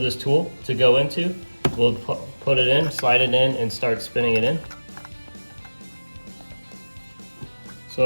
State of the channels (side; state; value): both; inverted; correlation -1.00